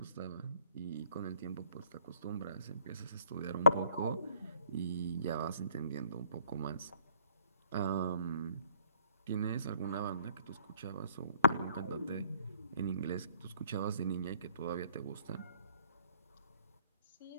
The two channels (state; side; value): inverted; both; correlation -0.61